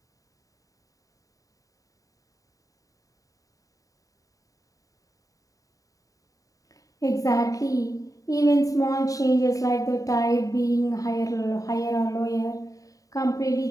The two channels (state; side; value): late; right; 0.16 ms